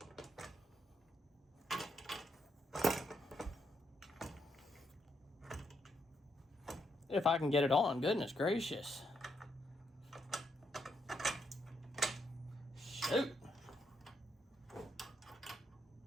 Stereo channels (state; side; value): normal; both; correlation 0.79